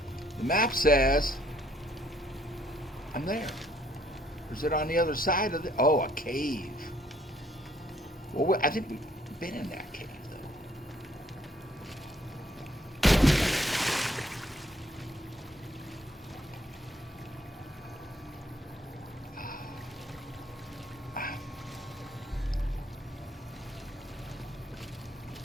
the map says I'm there. Or is it on the other side of the? Oh, a cave. Well, I think we've been in that cave though.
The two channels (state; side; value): normal; both; correlation 0.65